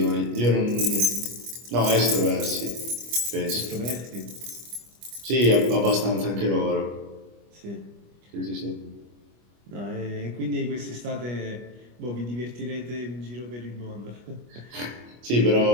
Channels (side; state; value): left; late; 25 ms